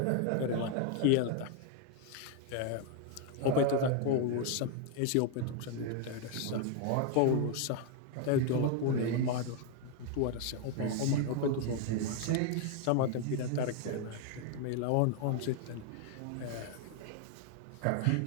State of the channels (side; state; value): both; different; correlation 0.00